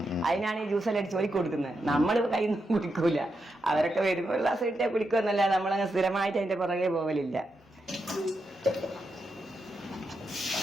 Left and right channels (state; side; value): normal; both; correlation 0.85